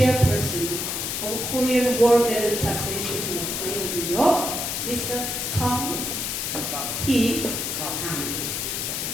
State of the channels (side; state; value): left; noise; hiss, 2 dB below the sound